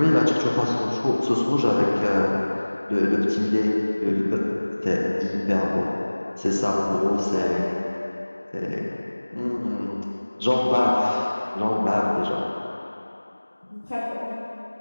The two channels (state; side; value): inverted; both; correlation -1.00